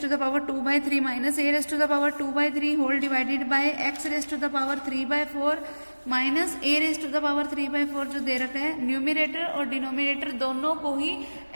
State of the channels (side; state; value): both; inverted; correlation -1.00